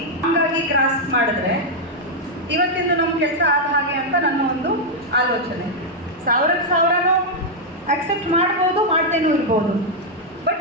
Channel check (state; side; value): normal; both; correlation -0.02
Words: ಹಂಗಾಗಿ ಕ್ರಾಸ್ ಮಾಡಿದ್ರೆ ಇವತ್ತಿಂದು ನಮ್ಮ ಕೆಲಸ ಆದ ಹಾಗೆ ಅಂತ ನನ್ನ ಒಂದು ಆಲೋಚನೆ. 1000 ಅಕ್ಸೆಪ್ಟ್ ಮಾಡ್ಬೋದು, ಮಾಡ್ದೇನೂ ಇರ್ಬೋದು.